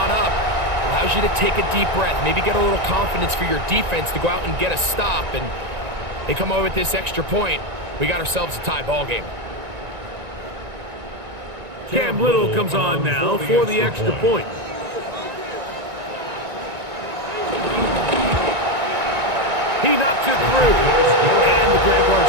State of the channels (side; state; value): left; late; 1.9 ms